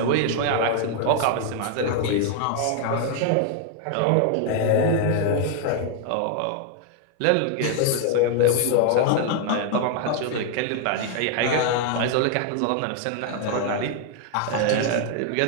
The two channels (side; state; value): both; different; correlation 0.00